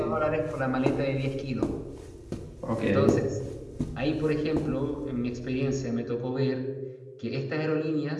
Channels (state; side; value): identical; both; correlation 1.00